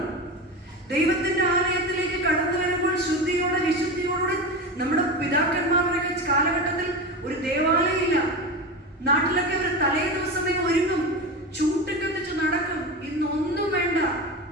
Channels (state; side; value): normal; both; correlation 0.24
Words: ദൈവത്തിന്റെ ആലയത്തിലേക്ക് കടന്നു വരുമ്പോൾ ശുദ്ധിയോടെ വിശുദ്ധിയോടെ നമ്മുടെ പിതാക്കന്മാരുടെ കാലഘട്ടത്തിൽ ഒരു ദേവാലയം ഇല്ല. നാട്ടിലൊക്കെ അവർ തലേ ദിവസമേ ഒരുങ്ങും, ചൂട്ടിക്കത്തിച്ച് നടക്കും. ഇന്നൊന്നും വേണ്ട,